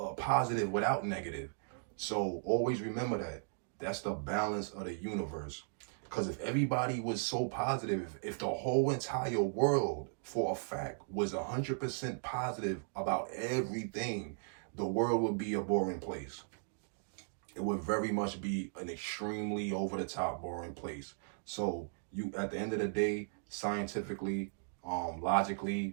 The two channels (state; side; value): silent; left; digital silence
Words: positive without negative. So always remember that. That's the balance of the universe. Because if everybody was so positive, if the whole entire world for a fact was 100% positive about everything, the world would be a boring place. It would very much be an extremely over the top boring place. So you, at the end of the day, scientifically,